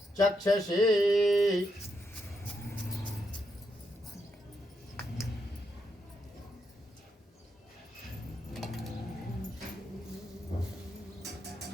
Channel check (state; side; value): normal; both; correlation 0.81